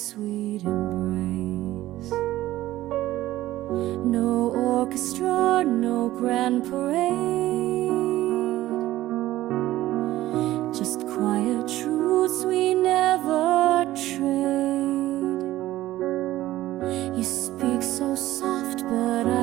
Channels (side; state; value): left; quieter; 15.4 dB